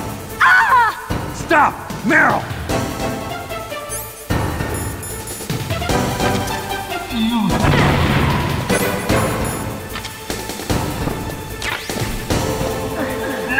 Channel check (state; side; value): identical; both; correlation 1.00